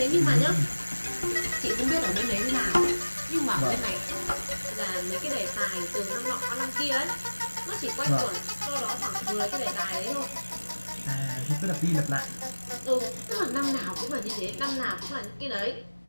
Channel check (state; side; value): inverted; both; correlation -1.00